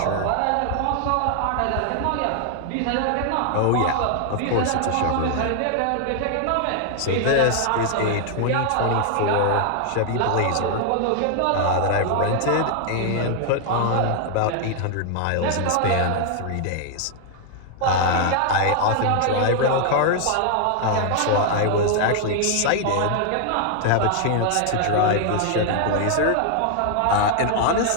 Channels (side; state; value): both; different; correlation 0.00